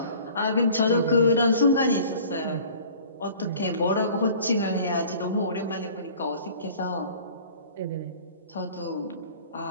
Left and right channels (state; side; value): inverted; both; correlation -0.48